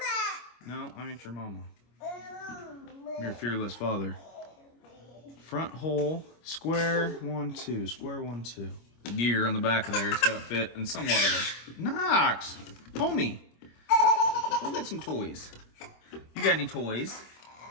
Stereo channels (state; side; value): late; right; 25 ms